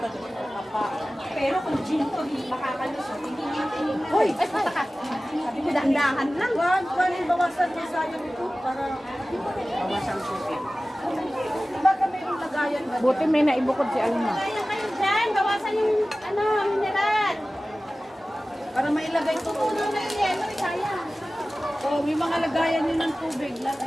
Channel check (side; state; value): both; normal; correlation 0.97